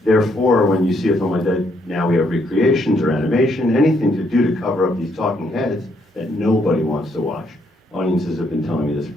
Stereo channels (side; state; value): both; normal; correlation 0.73